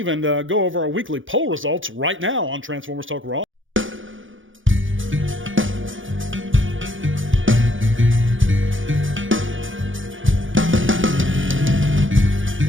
go over our weekly poll results right now on Transformers Talk Raw.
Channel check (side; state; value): left; late; 0.57 ms